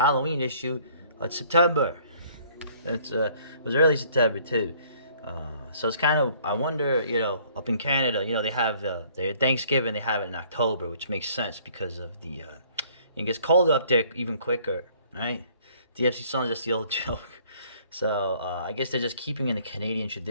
issue, it's September. It was early September too. So it's kind of I wonder, up in Canada, they have their Thanksgiving. They have it in October, which makes sense because of it gets colder up there even quicker, right? DFC songs, that's the old joke. So I guess they're just keeping in the Canadian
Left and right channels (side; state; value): both; inverted; correlation -0.58